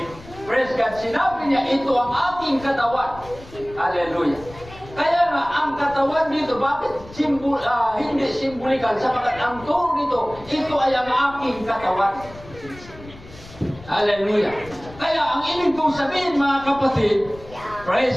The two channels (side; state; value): left; noise; rumble, 19 dB below the sound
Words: praise God, sinabi niya, ito ang aking katawan. Hallelujah. Kaya nga, ang katawan dito, bakit hindi simbolikal? Sapagkat ang turo dito, ito ay ang aking katawan. Hallelujah. Kaya ang ibig kong sabihin, mga kapatid,